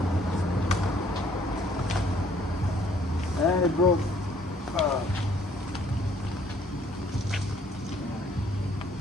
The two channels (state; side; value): normal; both; correlation 0.62